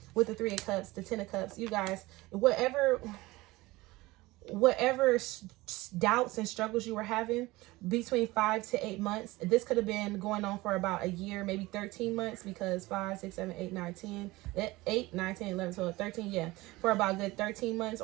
with the Three of Cups, the Ten of Cups. You guys, whatever doubts and struggles you were having between 5 to 8 months, this could have been going on for about a year, maybe 13 months, because 5, 6, 7, 8, 9, 10, 8, 9, 10, 11, 12, 13, yeah, for about a good 13 months,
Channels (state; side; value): quieter; left; 20.3 dB